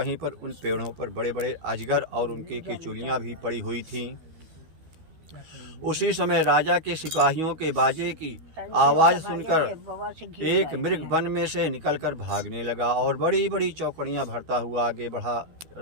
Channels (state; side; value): late; left; 13 ms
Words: पर उन पेड़ों पर बड़े बड़े अजगर और उनकी केचुलियां भी पड़ी हुई थीं। उसी समय राजा के सिपाहियों के बाजे की आवाज़ सुनकर एक मृग वन में से निकलकर भागने लगा और बड़ी बड़ी चौकड़ियां भरता हुआ आगे बढ़ा।